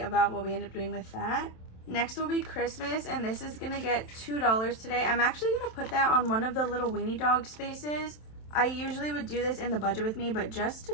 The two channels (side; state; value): right; late; 27 ms